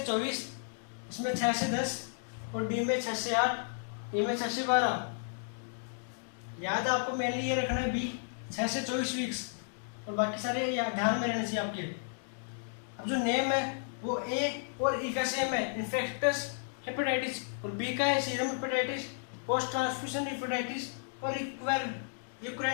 24, इसमें 6 से 10 और डी में 6 से 8, ई में 6 से 12। याद आपको मेनली ये रखना है बी 6 से 24 वीक्स और बाकी सारे ध्यान में रहने चाहिए आपके। अब जो नेम है वो ए और ई का सेम है, इन्फेक्टस हेपेटाइटिस, और बी का है serum hepatitis, post transfusion hepatitis और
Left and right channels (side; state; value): right; silent; digital silence